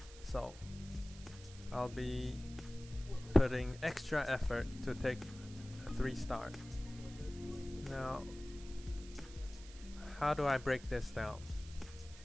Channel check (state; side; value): noise; right; hiss, 18 dB below the sound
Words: So I'll be putting extra effort to take a 3-star. Now, how do I break this down?